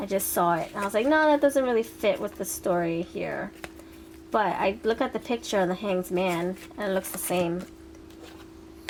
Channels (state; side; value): identical; both; correlation 1.00